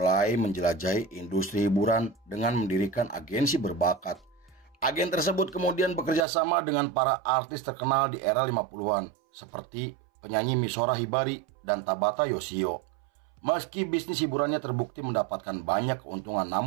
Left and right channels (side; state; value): left; drops out; at 6.2 s